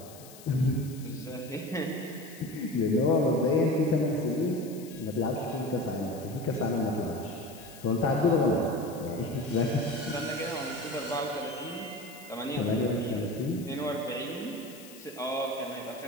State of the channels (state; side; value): noise; left; hiss, 19 dB below the sound